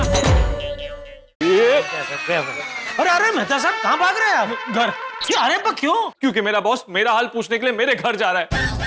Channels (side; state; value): both; identical; correlation 1.00